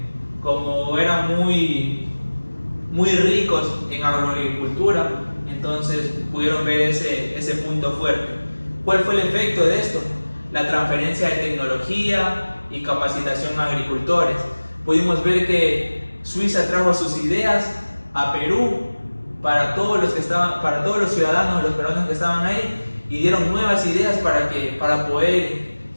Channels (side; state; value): both; inverted; correlation -1.00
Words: Como eran muy ricos en agroagricultura, entonces pudieron ver ese punto fuerte. ¿Cuál fue el efecto de esto? La transferencia de tecnología y capacitación a agricultores. Pudimos ver que Suiza trajo sus ideas a Perú para todos los ciudadanos, los peruanos que estaban ahí, y dieron nuevas ideas para poder